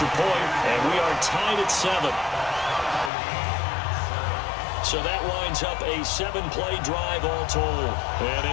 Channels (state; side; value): drops out; right; at 3.1 s